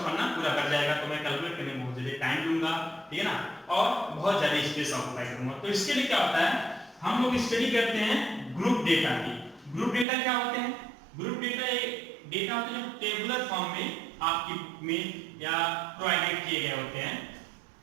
पन्ना पूरा भर जाएगा। तो मैं कैलकुलेट करने में बहुत ज्यादा टाइम लूंगा, ठीक है ना, और बहुत ज्यादा स्पेस ऑक्यूपाई करूंगा। तो इसके लिए क्या होता है, हम लोग स्टडी करते हैं ग्रुप डेटा की। ग्रुप डेटा क्या होते हैं, ग्रुप डेटा एक डेटा होते हैं जो टेबुलर फॉर्म में आपकी में या प्रोवाइडेड किए गए होते हैं।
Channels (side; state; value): left; drops out; at 10.1 s